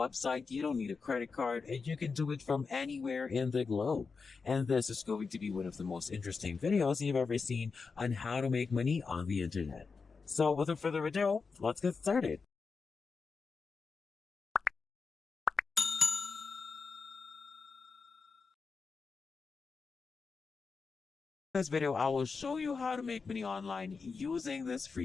you don't need a credit card, and you can do it from anywhere in the globe. And this is going to be one of the most interesting videos you've ever seen on how to make money on the internet. So without further ado, let's get started. In this video, I will show you how to make money online using this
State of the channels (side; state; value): right; quieter; 4.9 dB